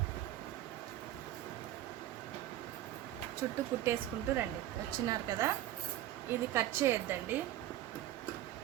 చుట్టూ కుట్టేసుకుంటూ రండి. వచ్చినారు కదా, ఇది కట్ చేయొద్దండి.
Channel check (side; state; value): left; quieter; 13.4 dB